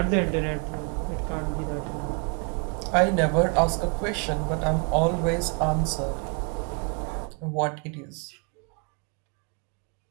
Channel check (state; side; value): quieter; left; 35.3 dB